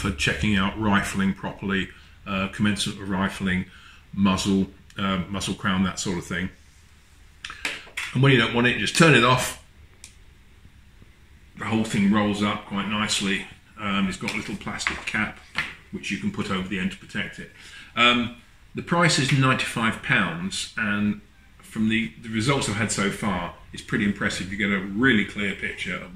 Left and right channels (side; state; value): both; identical; correlation 1.00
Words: checking out rifling properly, commencement of rifling, muzzle crown, that sort of thing. And when you don't want it, you just turn it off. The whole thing rolls up quite nicely. It's got a little plastic cap which you can put over the end to protect it. The price is £95, and from the results I've had so far, it's pretty impressive. You get a really clear picture of